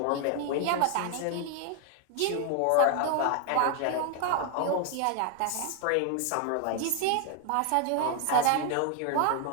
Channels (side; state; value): both; different; correlation 0.00